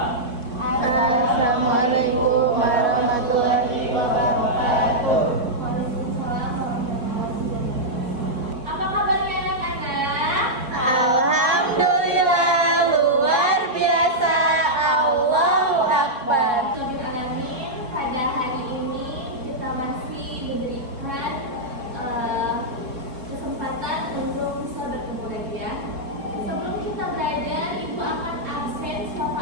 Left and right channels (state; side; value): late; left; 3.6 ms